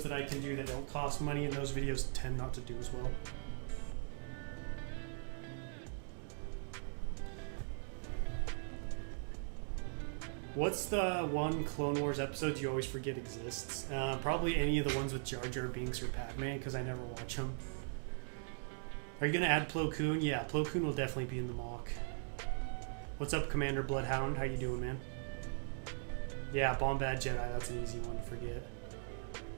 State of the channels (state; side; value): silent; left; digital silence